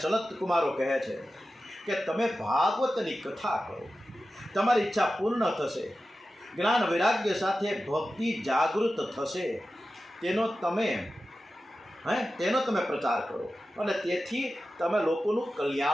સનત કુમારો કહે છે કે તમે ભાગવતની કથા કરો, તમારી ઈચ્છા પૂર્ણ થશે. જ્ઞાન વૈરાગ્ય સાથે ભક્તિ જાગૃત થશે. તેનો તમે પ્રચાર કરો અને તેથી તમે લોકોનું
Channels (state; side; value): normal; both; correlation 0.93